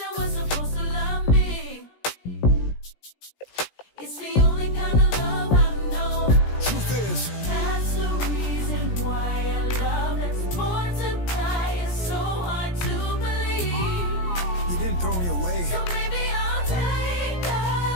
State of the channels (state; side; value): late; right; 17 ms